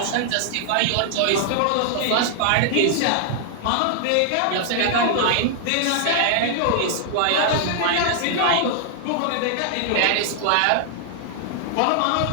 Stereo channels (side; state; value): both; different; correlation -0.01